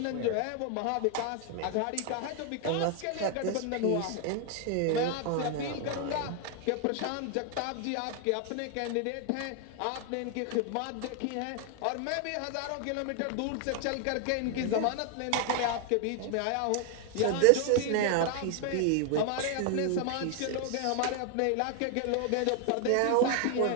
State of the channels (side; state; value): both; different; correlation 0.00